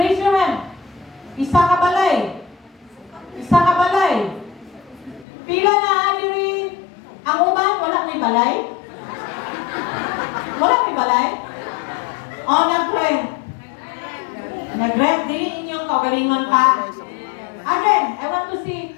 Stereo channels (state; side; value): drops out; right; at 5.2 s